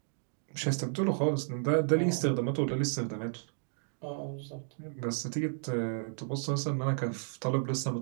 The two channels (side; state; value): left; silent; digital silence